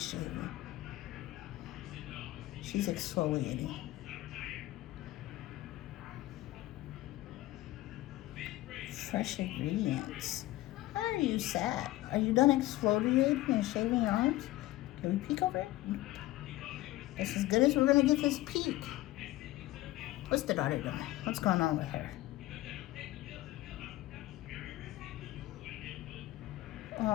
shaving. She's exfoliating. Fresh ingredients. How are you sad? Are you done exfoliating and shaving your arms? Can we peek over it? That's as good as we're gonna get this peek. What's the daughter doing? What's going on with her?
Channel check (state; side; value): quieter; right; 16.8 dB